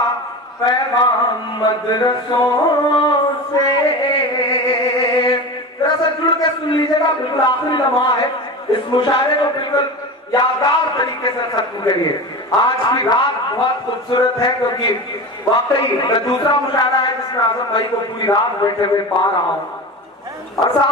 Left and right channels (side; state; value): both; normal; correlation 0.28